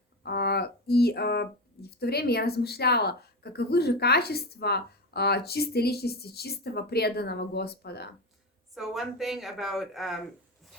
И в то время я размышляла, каковы же качества чистой личности, чистого преданного Господа. So one thing about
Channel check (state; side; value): normal; both; correlation 0.20